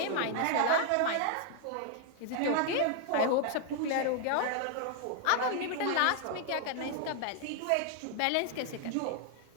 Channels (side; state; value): both; different; correlation 0.00